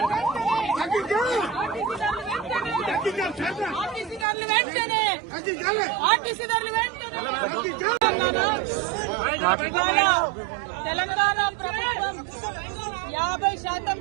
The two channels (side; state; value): left; drops out; at 4.2 s